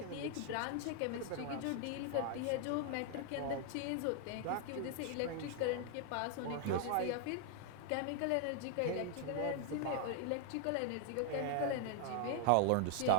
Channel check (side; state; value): both; different; correlation 0.00